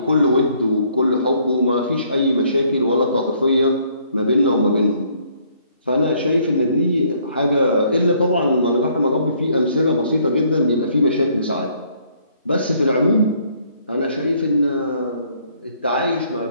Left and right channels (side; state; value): both; inverted; correlation -0.64